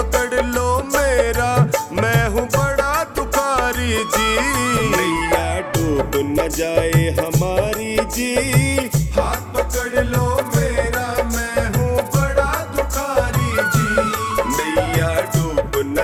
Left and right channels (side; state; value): both; identical; correlation 1.00